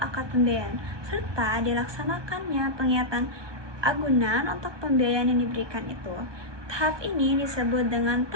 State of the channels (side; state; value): left; late; 1.2 ms